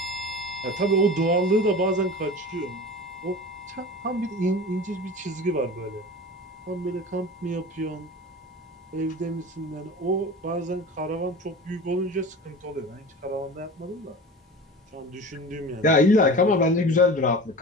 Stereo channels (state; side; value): normal; both; correlation 0.35